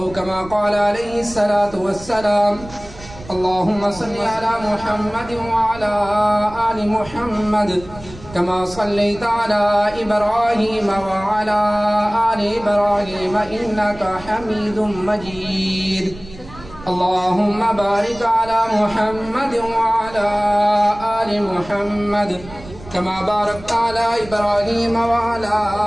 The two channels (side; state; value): right; noise; rumble, 17 dB below the sound